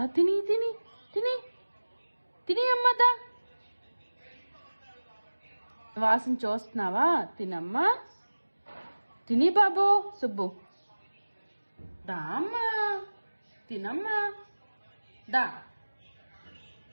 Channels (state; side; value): inverted; both; correlation -1.00